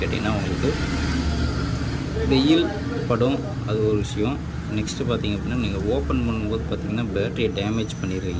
கேட்டிங்கன்னா உங்களுக்கு வெயில் படும், அது ஒரு விஷயம். நெக்ஸ்ட்டு பார்த்திங்க அப்படின்னா நீங்கள் ஓப்பன் பண்ணும்போது பார்த்திங்கன்னா பேட்டரியை டேமேஜ்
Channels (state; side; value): identical; both; correlation 1.00